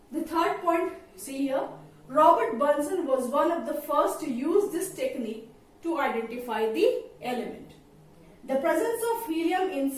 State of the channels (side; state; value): both; identical; correlation 1.00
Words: The third point, see here, Robert Bunsen was one of the first to use this technique to identify the element. The presence of helium in